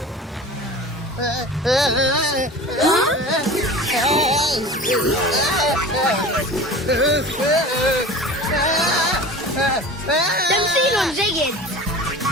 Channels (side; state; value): both; normal; correlation 0.37